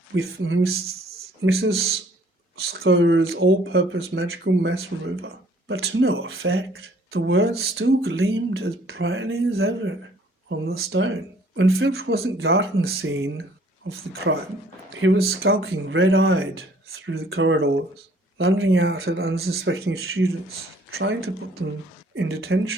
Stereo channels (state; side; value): normal; both; correlation 0.59